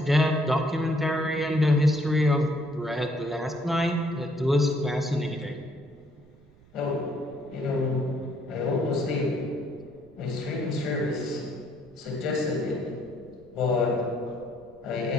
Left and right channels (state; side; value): noise; right; rumble, 26 dB below the sound